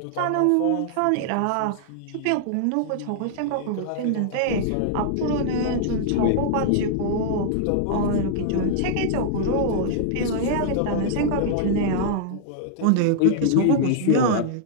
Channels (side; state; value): both; different; correlation -0.01